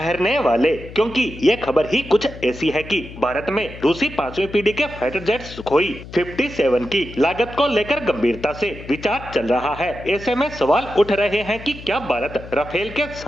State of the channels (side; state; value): left; noise; hum, 15 dB below the sound